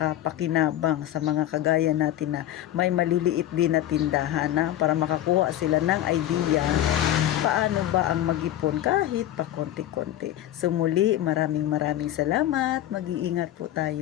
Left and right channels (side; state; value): right; quieter; 12.6 dB